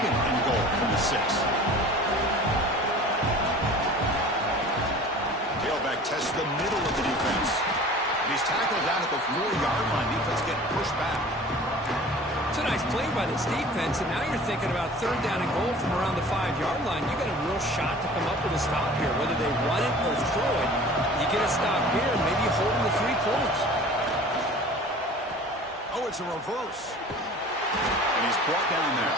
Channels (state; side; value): normal; both; correlation 0.43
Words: and goal from the 6. Tailback tests the middle of the defense. And he's tackled down at the 4-yard line. Defense getting pushed back. It's a nice play by this defense, and now you're thinking about third down and goal from around the 5-yard line. You got a real shot to come up with a stop here. Whether they run it or throw it, you get a stop here, and maybe you hold them to 3 points. Oh, it's a reverse. And he's brought down there.